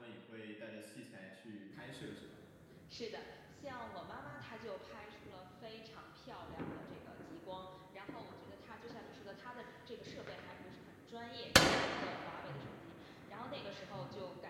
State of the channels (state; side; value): identical; both; correlation 1.00